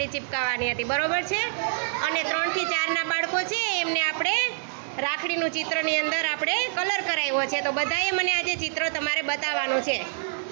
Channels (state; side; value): silent; left; 61 dB below the other